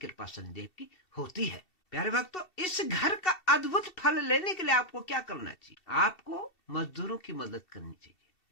शनिदेव की होती है। प्यारे भक्तों, इस घर का अद्भुत फल लेने के लिए आपको क्या करना चाहिए? आपको मजदूरों की मदद करनी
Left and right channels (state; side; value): late; right; 2.7 ms